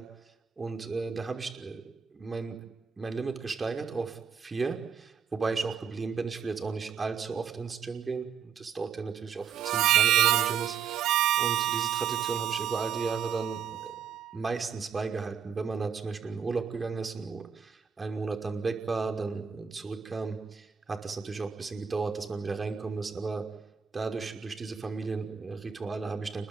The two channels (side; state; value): left; quieter; 7.2 dB